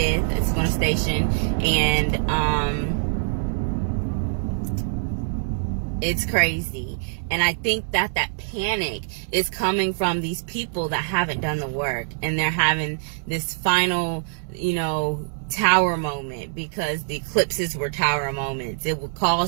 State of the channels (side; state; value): left; silent; digital silence